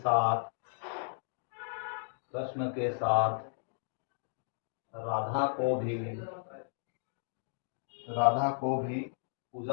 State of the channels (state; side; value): silent; right; digital silence